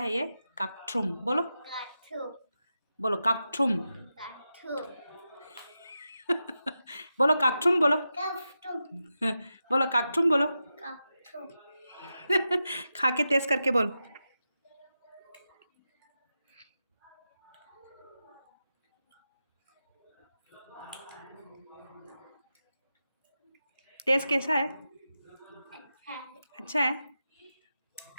है ये kakthrum बोलो बोलो kakthrum बोलो kakthrum बोलो बोलो kakthrum बोलो खा के टेस्ट करके बोल टेस्ट कैसा है अच्छा है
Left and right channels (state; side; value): inverted; both; correlation -0.90